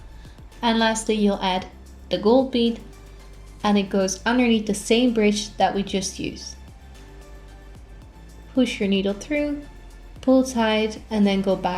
And lastly, you'll add the gold bead, and it goes underneath the same bridge that we just used. Push your needle through, pull tight, and then go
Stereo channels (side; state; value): both; identical; correlation 1.00